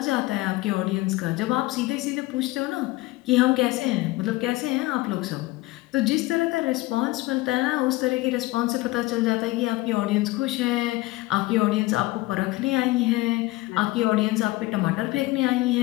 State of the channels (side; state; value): right; quieter; 19.9 dB